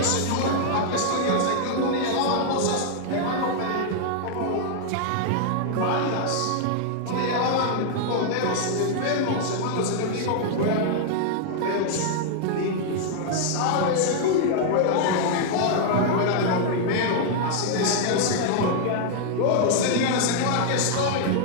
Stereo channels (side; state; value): both; different; correlation -0.01